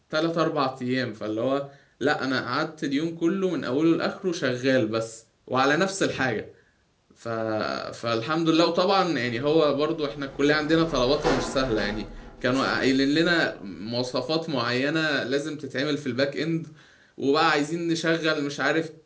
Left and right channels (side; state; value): both; identical; correlation 1.00